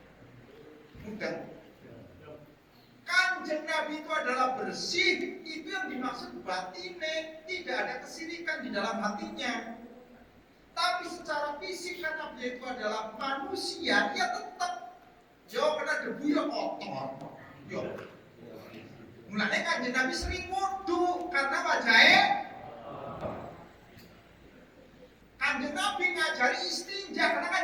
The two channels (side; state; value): both; identical; correlation 1.00